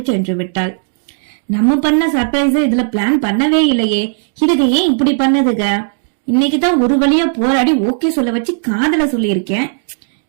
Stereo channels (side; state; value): left; silent; 70 dB below the other